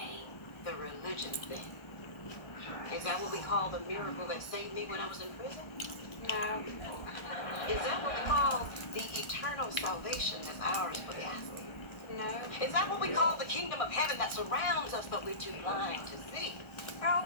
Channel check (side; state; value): right; late; 1.4 ms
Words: The religion thing? Is that what we call the miracle that saved me when I was in prison? No. Is that what we call the eternal salvation that's ours for the asking? No. Is that what we call the kingdom of heaven that surrounds us but we're too blind to see? Oh,